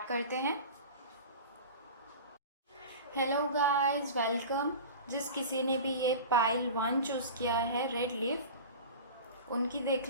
करते हैं। Hello guys, welcome. जिस किसी ने भी ये पाइल 1 चूज़ किया है, रेड लीफ, उनकी देख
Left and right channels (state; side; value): inverted; both; correlation -0.34